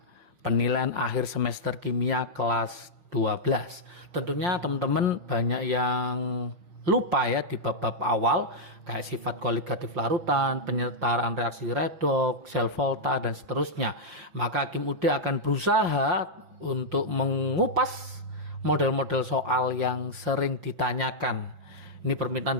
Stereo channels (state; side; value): late; left; 5.6 ms